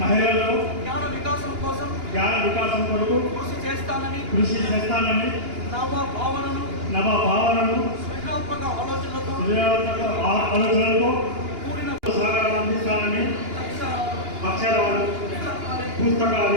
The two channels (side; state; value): left; late; 2.9 ms